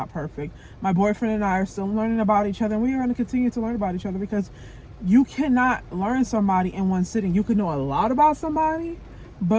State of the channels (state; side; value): identical; both; correlation 1.00